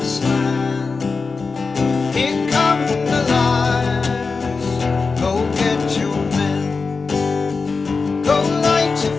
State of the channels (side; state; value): right; quieter; 4.4 dB